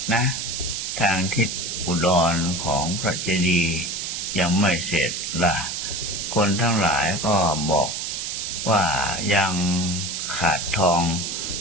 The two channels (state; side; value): noise; right; hiss, 4 dB below the sound